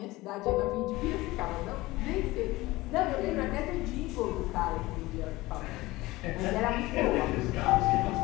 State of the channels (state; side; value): quieter; right; 19.5 dB